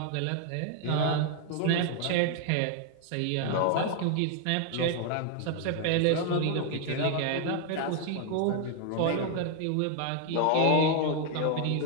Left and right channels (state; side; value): different; both; correlation 0.00